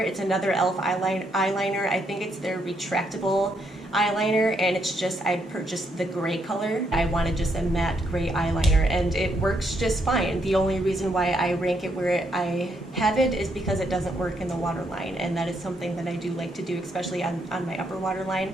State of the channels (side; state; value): both; normal; correlation 0.75